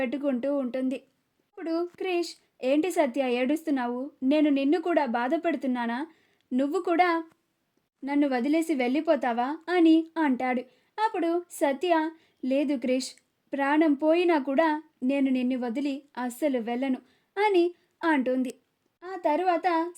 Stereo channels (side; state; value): both; identical; correlation 1.00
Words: ఉంటుంది. అప్పుడు క్రిష్, ఏంటి సత్య ఏడుస్తున్నావు? నేను నిన్ను కూడా బాధపడుతున్నానా? నువ్వు కూడా నన్ను వదిలేసి వెళ్ళిపోతావా అని అంటాడు. అప్పుడు సత్య, లేదు క్రిష్, ప్రాణం పోయినా కూడా నేను నిన్ను వదిలి అస్సలు వెళ్ళను అని అంటుంది. ఆ తరువాత